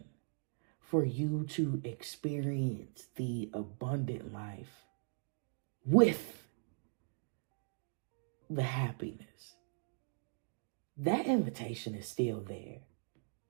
for you to experience the abundant life with the happiness, that invitation is still there.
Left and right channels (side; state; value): left; silent; digital silence